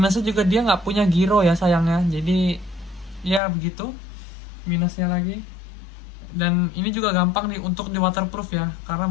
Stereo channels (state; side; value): drops out; right; at 3.4 s